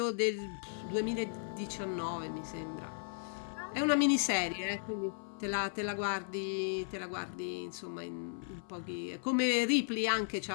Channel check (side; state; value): right; silent; 54 dB below the other